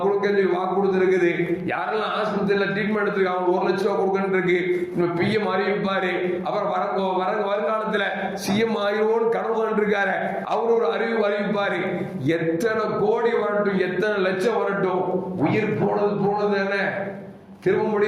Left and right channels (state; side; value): identical; both; correlation 1.00